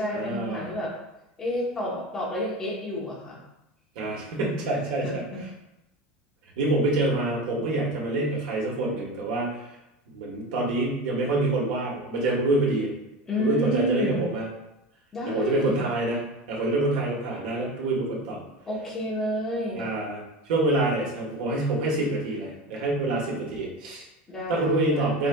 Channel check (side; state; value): both; normal; correlation 0.28